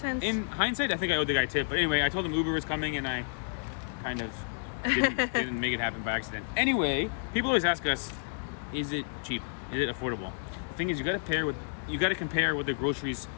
In hindsight, I think I owed the guy a tip, but anyway, I told him Uber was coming, and I kind of didn't make it happen by accident. Anyway, people always ask us, is it cheap? Is it affordable? The thing is, you got to compare what the groceries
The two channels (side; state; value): right; silent; digital silence